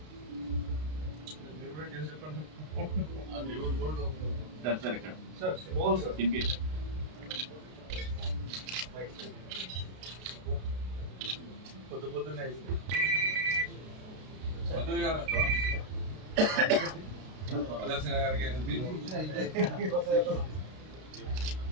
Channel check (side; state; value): left; late; 32 ms